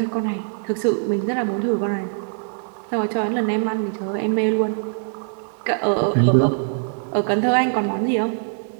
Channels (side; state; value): left; silent; digital silence